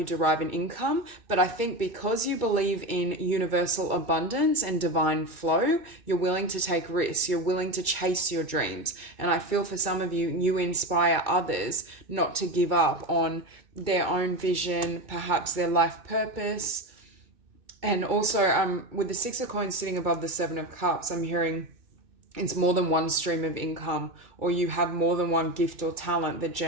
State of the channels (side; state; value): left; late; 2.3 ms